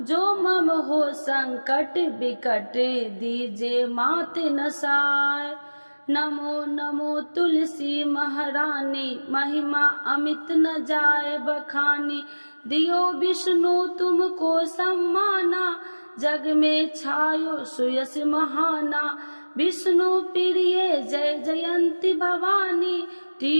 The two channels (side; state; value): both; inverted; correlation -1.00